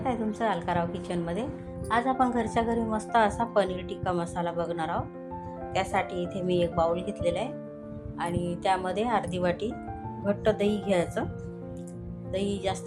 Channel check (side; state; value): both; identical; correlation 1.00